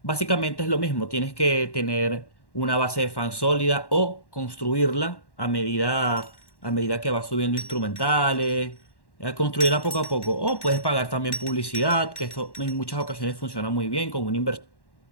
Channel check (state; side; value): late; right; 1.1 ms